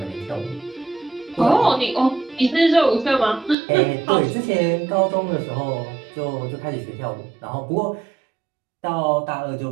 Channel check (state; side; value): drops out; left; at 3.6 s